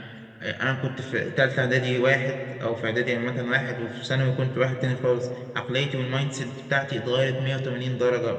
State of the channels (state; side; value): identical; both; correlation 1.00